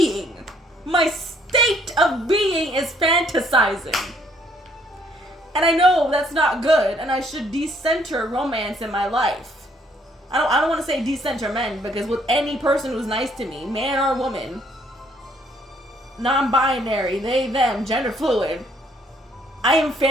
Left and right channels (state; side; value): normal; both; correlation 0.66